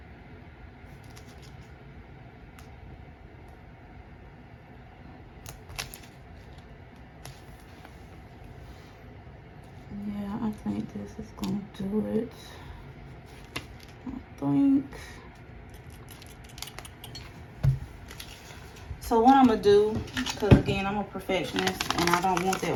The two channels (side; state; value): both; identical; correlation 1.00